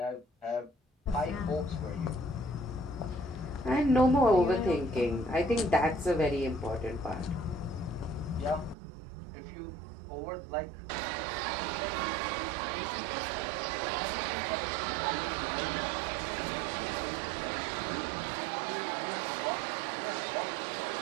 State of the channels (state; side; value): drops out; left; at 8.8 s